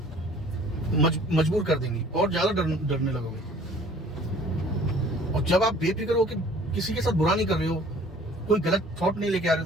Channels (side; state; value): both; normal; correlation 0.52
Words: मजबूर कर देंगी, और ज्यादा डरने लगोगे। और जब आप बेफिक्र हो कि किसी के साथ बुरा नहीं कर रहे हो, कोई गलत थॉट नहीं लेके आ रहे हो